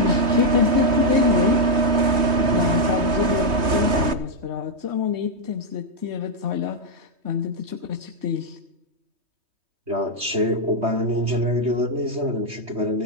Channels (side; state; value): left; late; 3.2 ms